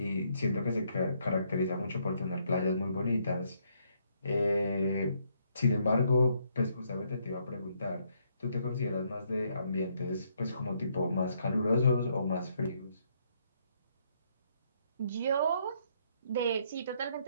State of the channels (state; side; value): inverted; both; correlation -0.72